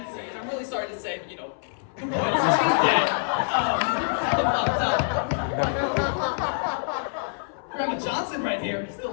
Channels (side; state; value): right; silent; 61 dB below the other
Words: and I'm really sorry to say, she's dead. Grandma Johnson right here,